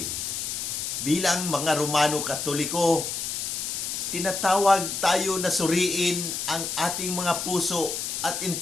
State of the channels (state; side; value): noise; left; hiss, 3 dB below the sound